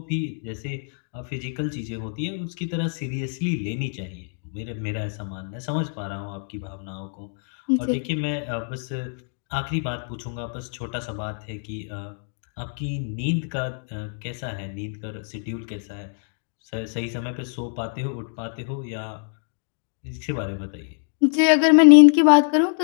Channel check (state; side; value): silent; right; digital silence